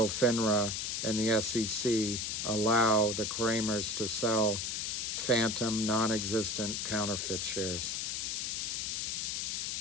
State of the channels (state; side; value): noise; left; hiss, 1 dB below the sound